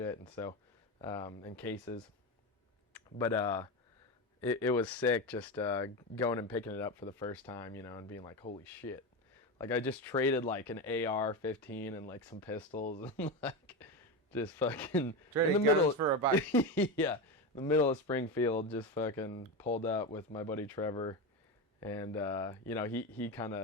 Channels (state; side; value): normal; both; correlation 0.17